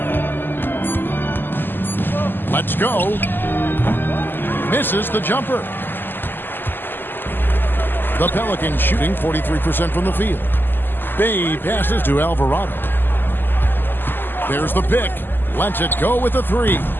Let's go. Misses the jumper. The Pelicans shooting 43% from the field. Bay passes to Alvarado. There's the pick. Lets it go with the 3.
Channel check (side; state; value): right; late; 0.094 ms